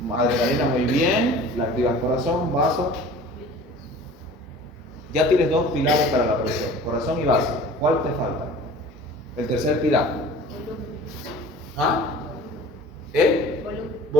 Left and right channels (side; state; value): both; normal; correlation 0.43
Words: Adrenalina, muy bien, la activa el corazón, vaso. Ya tienes dos pilares para la presión, corazón y vaso. ¿Cuál te falta? El tercer pilar. ¿Ah? ¿El?